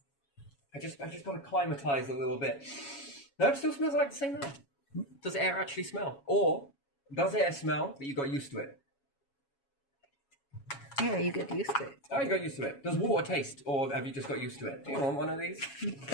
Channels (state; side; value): late; right; 7.2 ms